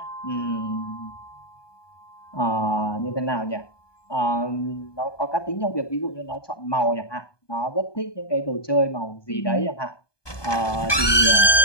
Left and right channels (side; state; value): right; late; 1.2 ms